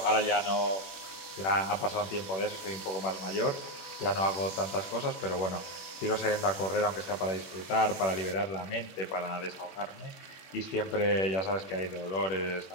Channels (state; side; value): late; right; 21 ms